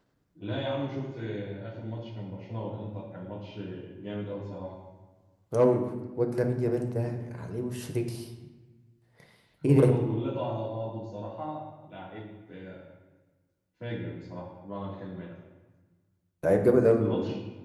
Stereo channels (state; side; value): identical; both; correlation 1.00